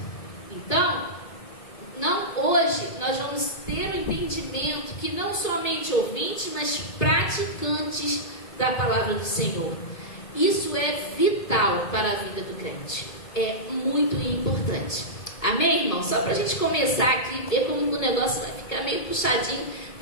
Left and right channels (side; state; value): right; late; 2.5 ms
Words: Então, hoje nós vamos ter o entendimento que não somente ouvintes, mas praticantes da palavra do Senhor. Isso é vital para a vida do crente. É muito importante. Amém, irmão? Só para a gente começar aqui, ver como o negócio vai ficar meio puxadinho.